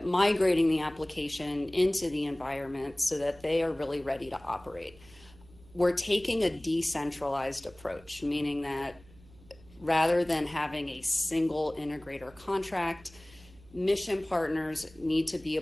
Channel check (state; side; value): noise; right; hum, 24 dB below the sound